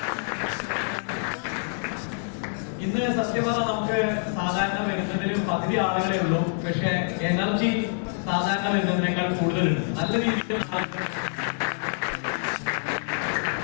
ഇന്ന് സത്യമാ നമുക്ക് സാധാരണ വരുന്നതിൽ പകുതി ആളുകളെ ഉള്ളൂ. പക്ഷെ എനർജി സാധാരണ വരുന്നതിനേക്കാൾ കൂടുതലുണ്ട്. നല്ല രീതിയിൽ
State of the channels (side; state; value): right; silent; digital silence